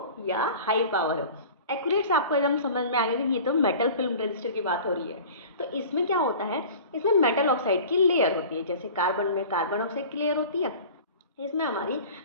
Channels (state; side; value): inverted; both; correlation -0.41